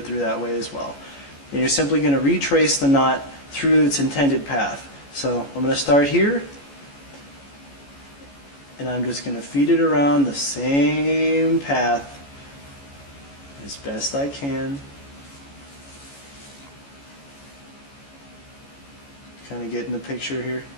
through that way as well. And you're simply going to retrace the knot through its intended path. So I'm going to start here, and I'm just going to feed it around the same path as best I can. Kind of getting the picture here.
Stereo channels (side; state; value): right; late; 14 ms